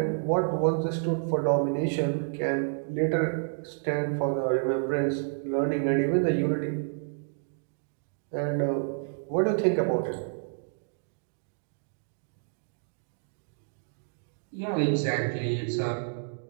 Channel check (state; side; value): silent; left; digital silence